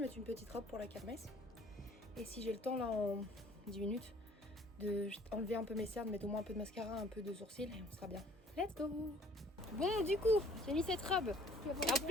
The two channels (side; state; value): both; normal; correlation 0.56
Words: mettre une petite robe pour la kermesse. Et si j'ai le temps là en 10 minutes de enlever un peu mes cernes, mettre au moins un peu de mascara, un peu de sourcils et on sera bien. Let's go. Bon du coup, j'ai mis cette robe. Et